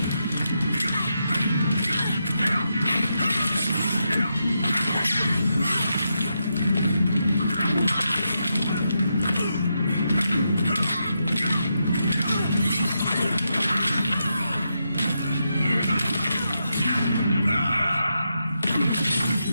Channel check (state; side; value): inverted; both; correlation -0.84